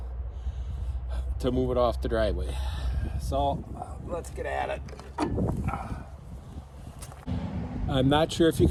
to move it off the driveway. So let's get at it. I'm not sure if you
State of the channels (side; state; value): both; identical; correlation 1.00